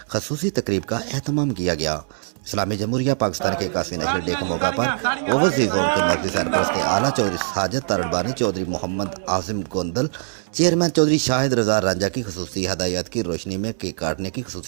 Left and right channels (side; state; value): left; silent; 61 dB below the other